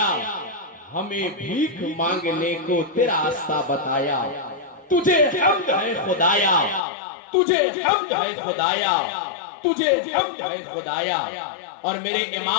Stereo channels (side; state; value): right; drops out; at 6.8 s